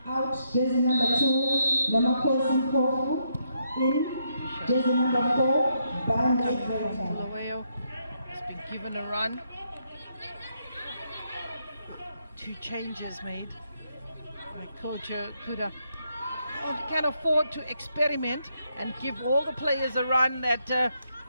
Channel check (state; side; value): inverted; both; correlation -0.77